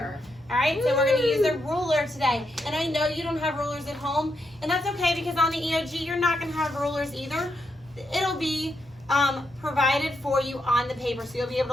All right, so we're gonna use a ruler today. And I know you don't have rulers at home, and that's okay because on the EOG, you're not gonna have rulers either. It'll be provided for you on the paper. So you'll be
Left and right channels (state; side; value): normal; both; correlation 0.81